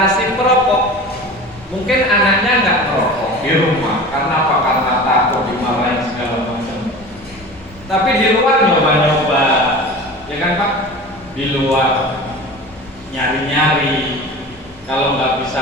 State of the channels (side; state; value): both; normal; correlation 0.35